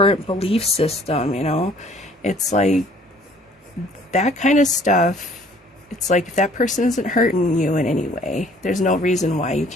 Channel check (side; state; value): both; normal; correlation 0.56